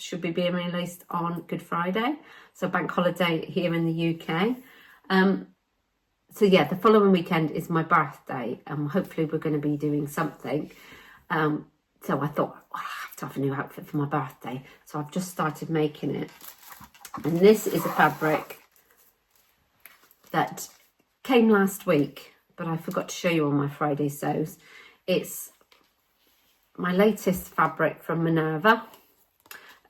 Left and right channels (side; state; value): both; identical; correlation 1.00